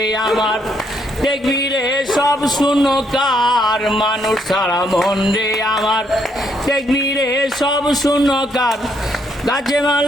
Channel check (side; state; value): both; normal; correlation 0.72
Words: আমার দেখবি রে সব শূন্যকার মানুষ সারা মন রে আমার দেখবি রে সব শূন্যকার গাছে